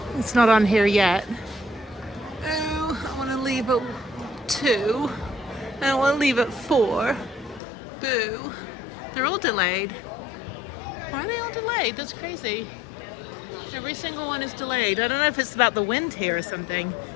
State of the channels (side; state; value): right; drops out; at 7.6 s